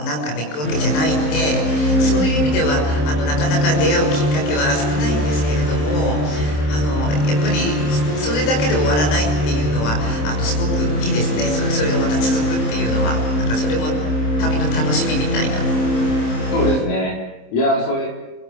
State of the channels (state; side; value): late; right; 27 ms